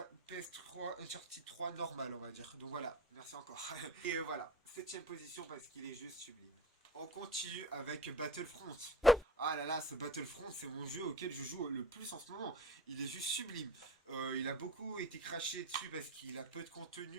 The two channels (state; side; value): normal; both; correlation 0.33